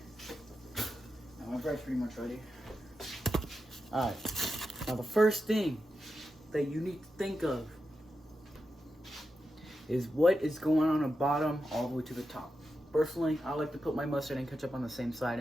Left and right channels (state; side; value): normal; both; correlation 0.89